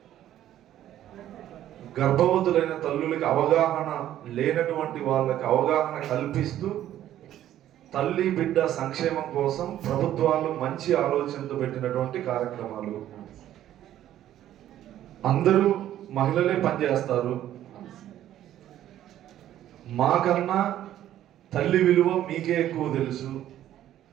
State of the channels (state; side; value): quieter; left; 12.2 dB